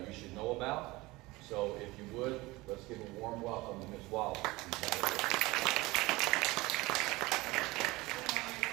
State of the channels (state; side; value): quieter; left; 21.1 dB